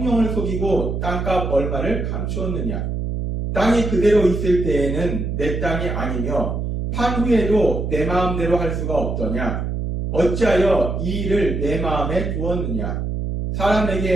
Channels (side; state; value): right; noise; hum, 2 dB below the sound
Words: 속이고 땅값 얼마를 감추었느냐. 땅이 그대로 있을 때에는 내 땅이 아니며 판 후에도 내 마음대로 할 수가 없더냐. 어찌하여 이 일을 내 마음에 두었느냐.